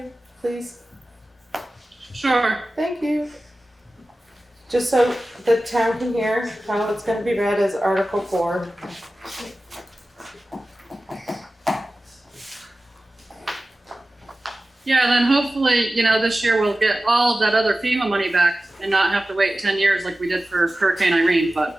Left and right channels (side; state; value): both; normal; correlation 0.96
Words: please? Sure. Thank you. Just so the town can hear how it's gonna be read as Article 4. Yeah, then hopefully, you know, this year we'll get all of that other FEMA money back and not have to wait 10 years like we did for Hurricane Irene,